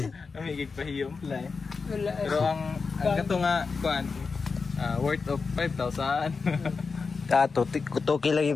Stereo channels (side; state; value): right; quieter; 4.8 dB